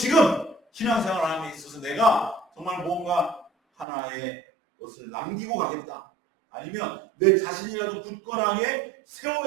신앙생활함에 있어서 내가 정말 뭔가 하나의 것을 남기고 가겠다. 아니면 내 자신이라도 굳건하게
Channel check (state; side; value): drops out; left; at 3.9 s